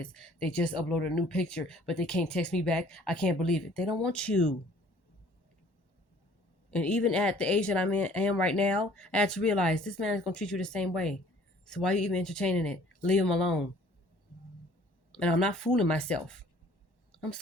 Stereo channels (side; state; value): right; late; 1.1 ms